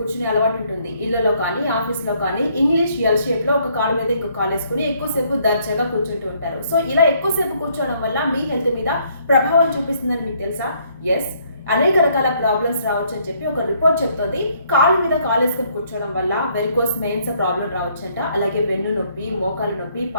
అలవాటు ఉంటుంది. ఇళ్లలో కానీ, ఆఫీస్‌లో కానీ ఇంగ్లీష్ ఎల్ షేప్‌లో ఒక కాలు మీద ఇంకో కాలేసుకొని ఎక్కువసేపు దర్జాగా కూర్చుంటూ ఉంటారు. సో, ఇలా ఎక్కువసేపు కూర్చోవడం వల్ల మీ హెల్త్ మీద ప్రభావం చూపిస్తుందని మీకు తెలుసా? యెస్. అనేక రకాల ప్రాబ్లమ్స్ రావచ్చని చెప్పి ఒక రిపోర్ట్ చెప్తోంది. కాలు మీద కాలేసుకొని కూర్చోవడం వల్ల వెరికోస్ వెయిన్స్ ప్రాబ్లమ్ రావచ్చంట. అలాగే వెన్ను నొప్పి, మోకాలు నొప్పి,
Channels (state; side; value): inverted; both; correlation -0.67